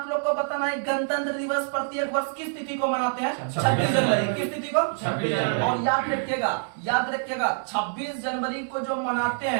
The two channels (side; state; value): left; silent; digital silence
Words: लोग को बताना है, गणतंत्र दिवस प्रत्येक वर्ष किस तिथि को मनाते हैं? 26 जनवरी। किस तिथि को? 26 जनवरी। और याद रखिएगा 26 जनवरी को जो मनाते